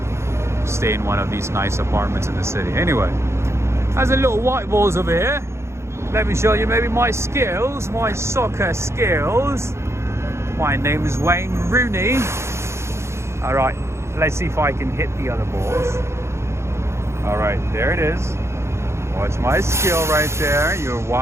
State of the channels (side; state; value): left; late; 0.13 ms